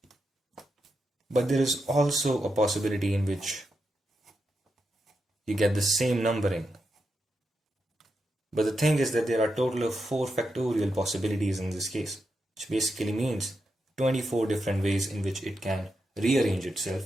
But there is also a possibility in which you get the same numbering. But the thing is that there are a total of 4 factorial possibilities in this case, which basically means 24 different ways in which it can rearrange itself,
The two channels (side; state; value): both; normal; correlation 0.85